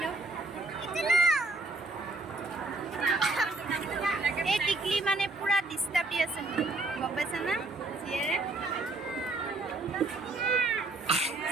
এই টিকলি মানে পুৰা ডিষ্টাৰ্ব দি আছে গম পাইছা না জীয়েৰে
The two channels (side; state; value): left; quieter; 3.1 dB